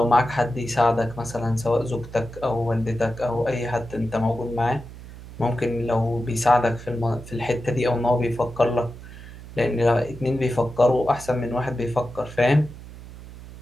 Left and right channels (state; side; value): noise; right; hum, 15 dB below the sound